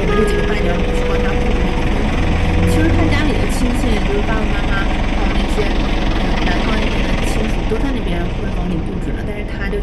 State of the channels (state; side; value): identical; both; correlation 1.00